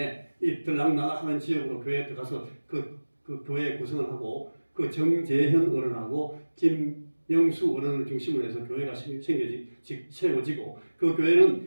이 들락날락하는 지역으로 교회에 들어가서 그 교회 구성을 하고, 그 정재현 어른하고 김영수 어른을 중심으로 해서 교회가 세워지고, 그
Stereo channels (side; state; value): both; inverted; correlation -1.00